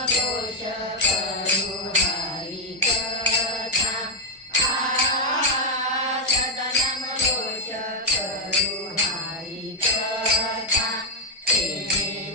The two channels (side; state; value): both; normal; correlation 0.03